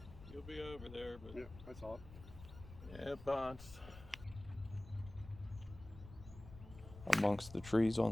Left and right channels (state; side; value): noise; left; rumble, 15 dB below the sound